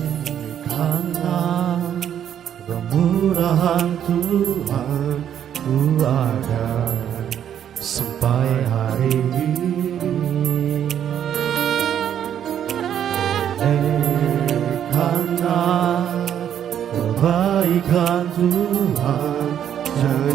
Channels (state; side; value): quieter; left; 9.6 dB